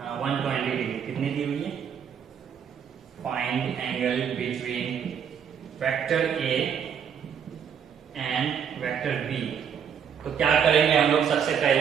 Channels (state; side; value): quieter; left; 7.8 dB